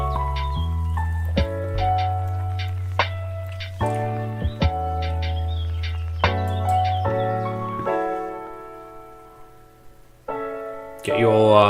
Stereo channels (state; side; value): identical; both; correlation 1.00